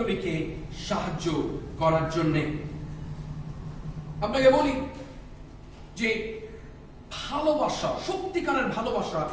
সাহায্য করার জন্য। আপনাকে বলি যে ভালোবাসা, সত্যিকারের ভালোবাসা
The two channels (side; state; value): both; identical; correlation 1.00